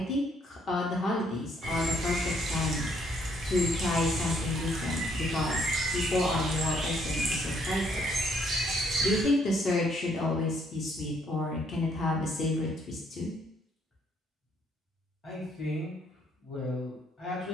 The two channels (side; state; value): both; normal; correlation 0.68